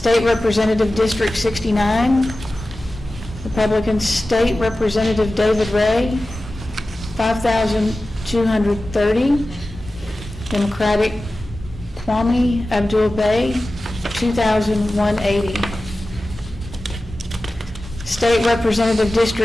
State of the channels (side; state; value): both; normal; correlation 0.95